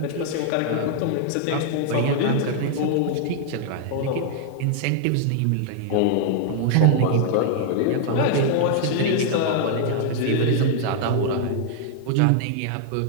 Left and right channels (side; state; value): both; different; correlation -0.01